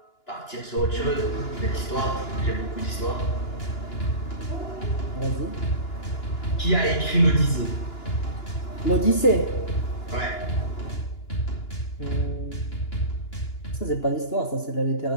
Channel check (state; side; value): late; right; 2.9 ms